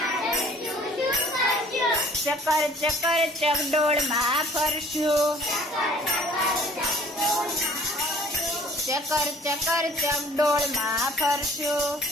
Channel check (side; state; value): both; normal; correlation 0.53